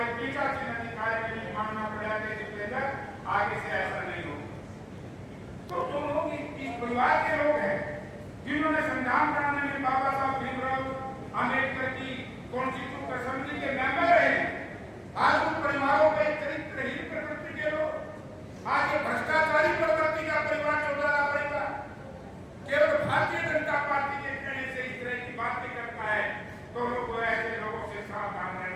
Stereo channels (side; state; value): both; identical; correlation 1.00